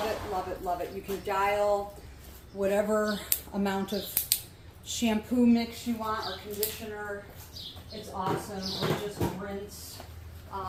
it, love it, love it. You can dial whatever amount of shampoo mix you want or conditioner. It's awesome. Or just rinse.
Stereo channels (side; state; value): both; identical; correlation 1.00